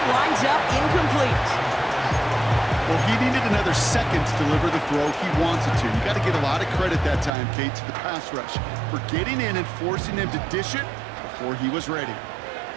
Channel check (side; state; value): left; drops out; at 7.3 s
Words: winds up incomplete. Well, he needed another second to deliver the throw he wanted to. You got to give a lot of credit that time, Kate, to the pass rush for getting in and forcing him to dish it before he was ready.